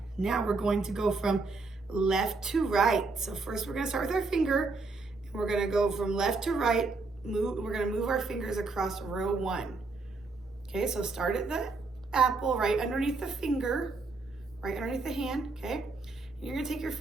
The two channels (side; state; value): left; quieter; 3.8 dB